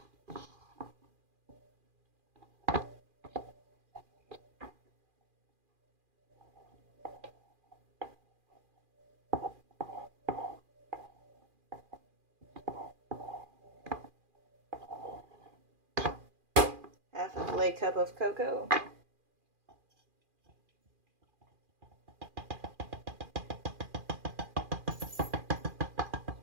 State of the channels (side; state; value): left; late; 2.4 ms